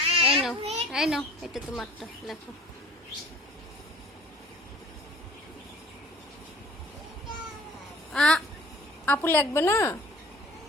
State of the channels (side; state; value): both; normal; correlation 0.48